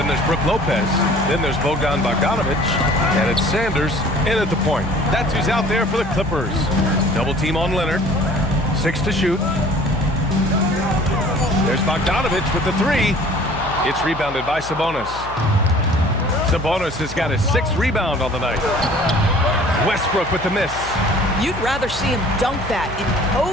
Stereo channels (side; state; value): left; noise; hum, 14 dB below the sound